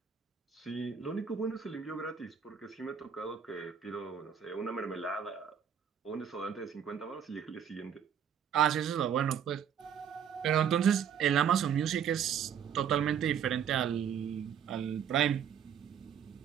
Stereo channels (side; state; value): left; quieter; 8.3 dB